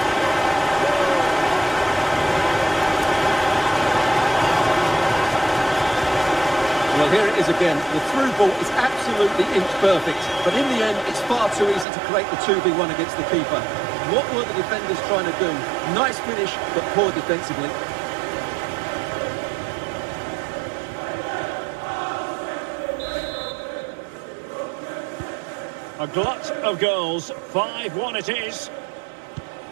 Well, here it is again. The through ball is absolutely inch perfect. But in the end, it's far too easy to create the 2v1 against the keeper. What were the defenders trying to do? Nice finish, but poor defensively. A glut of goals. 5-1 it is.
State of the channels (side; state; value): left; drops out; at 11.9 s